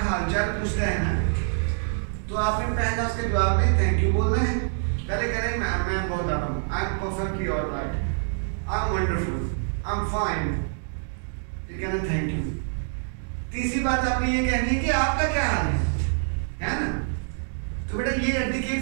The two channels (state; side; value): silent; left; digital silence